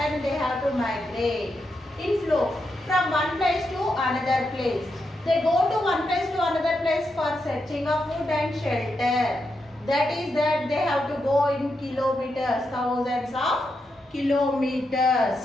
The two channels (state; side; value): normal; both; correlation 0.84